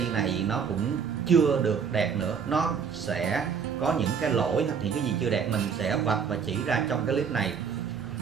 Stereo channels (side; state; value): left; quieter; 6.6 dB